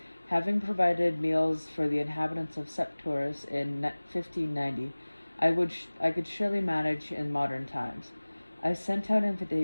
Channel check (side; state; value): both; inverted; correlation -1.00